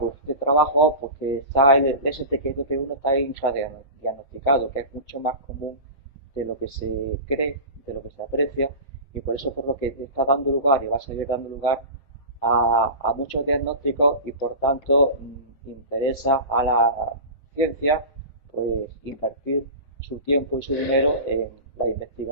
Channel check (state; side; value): late; right; 7.4 ms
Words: este trabajo, pues que el STQBP1 está infradiagnosticado, que es mucho más común de lo que se cree, de lo que se aprecia, y por eso por lo que está dando lugar y va a seguir dando lugar a muchos diagnósticos y por tanto interesa a la ciencia pues invertir su tiempo y su dinero en la